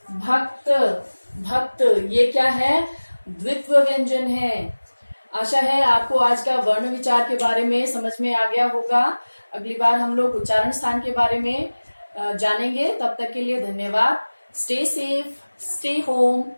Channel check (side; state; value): both; inverted; correlation -1.00